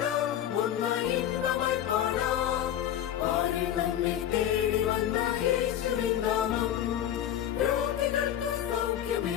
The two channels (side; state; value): right; quieter; 10.9 dB